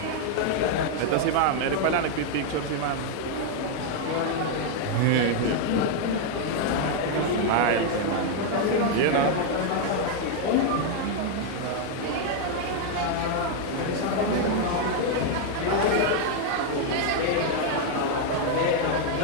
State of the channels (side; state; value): both; different; correlation 0.00